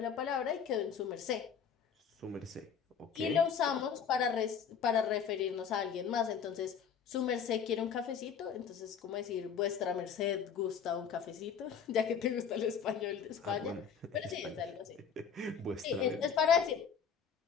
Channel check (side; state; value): right; quieter; 7.1 dB